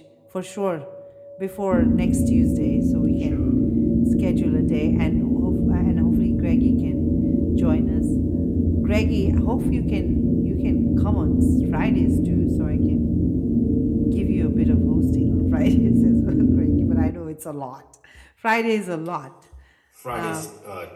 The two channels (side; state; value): both; identical; correlation 1.00